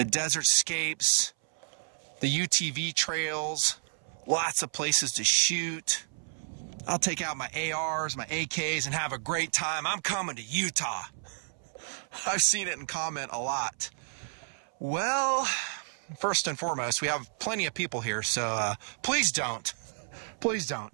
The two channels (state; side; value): silent; left; 57 dB below the other